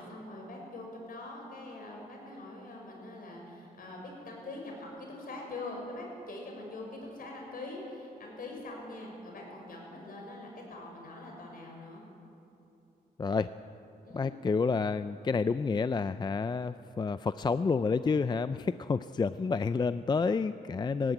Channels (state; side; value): quieter; right; 4.2 dB